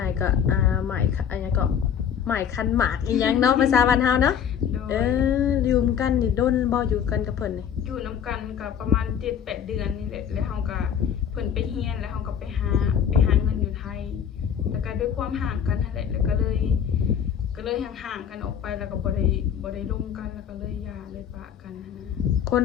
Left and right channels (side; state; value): right; quieter; 8.4 dB